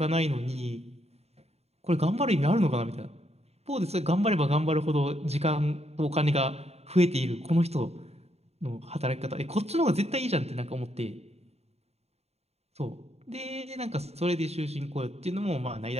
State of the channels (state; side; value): late; left; 0.30 ms